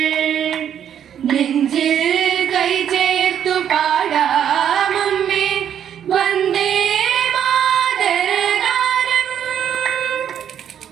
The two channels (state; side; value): quieter; left; 9.3 dB